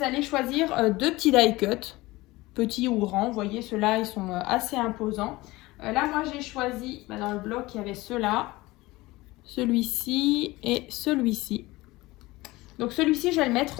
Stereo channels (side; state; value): right; quieter; 20.1 dB